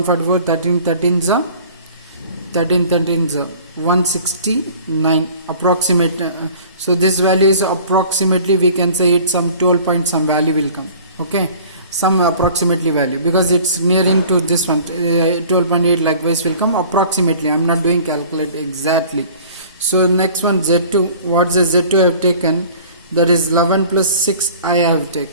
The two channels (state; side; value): inverted; both; correlation -0.47